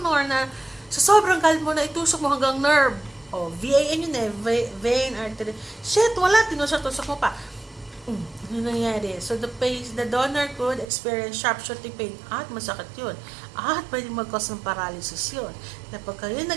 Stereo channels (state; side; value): drops out; left; at 10.9 s